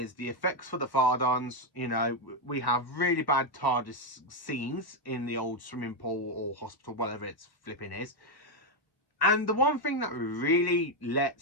the effects for the Fardons. You know, we have really bad TARDIS scenes in the old swimming pool or hospital, whatever it's flipping is. And the one thing that really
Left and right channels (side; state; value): right; late; 1.0 ms